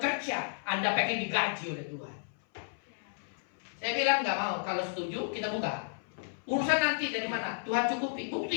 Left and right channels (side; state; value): right; silent; 56 dB below the other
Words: Anda pengen digaji oleh Tuhan. Saya bilang nggak mau. Kalau setuju kita buka. Urusan nanti dari mana? Tuhan cukupi.